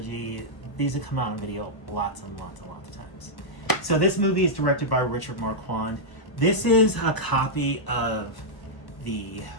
These have come out on video lots and lots of times. So this movie is directed by Richard Marquand. This is a copy of the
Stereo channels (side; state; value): right; late; 1.2 ms